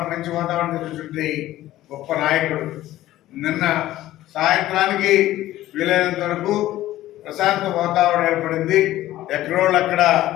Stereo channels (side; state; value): right; quieter; 14.8 dB